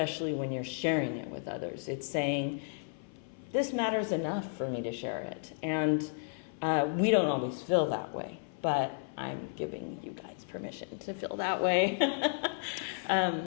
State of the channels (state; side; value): silent; right; 56 dB below the other